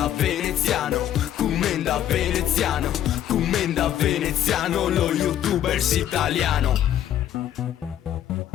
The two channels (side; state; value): right; quieter; 11.1 dB